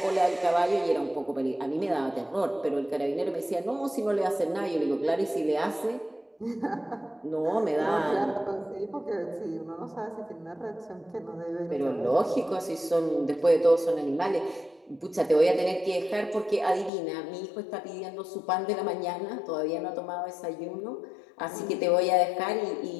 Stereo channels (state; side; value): drops out; right; at 16.9 s